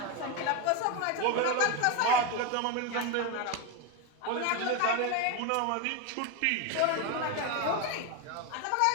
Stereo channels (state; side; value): different; both; correlation 0.02